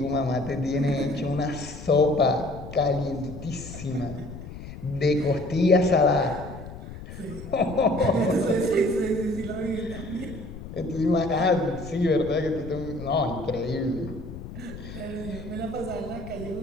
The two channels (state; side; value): noise; left; rumble, 12 dB below the sound